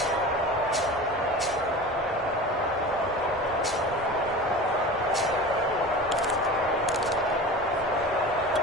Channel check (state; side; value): normal; both; correlation 0.34